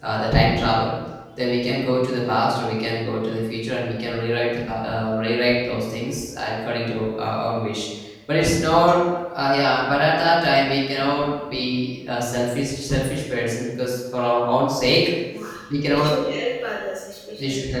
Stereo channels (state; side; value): identical; both; correlation 1.00